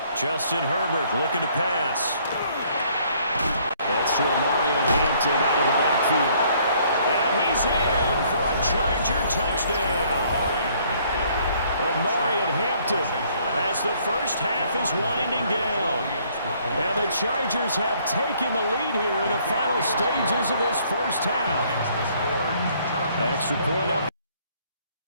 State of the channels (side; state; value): both; inverted; correlation -0.63